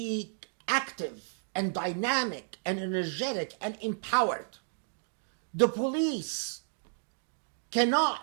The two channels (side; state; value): left; silent; digital silence